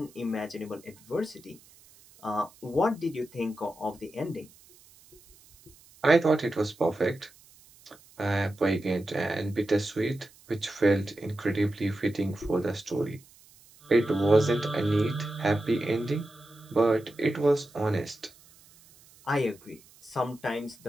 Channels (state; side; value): noise; right; hiss, 26 dB below the sound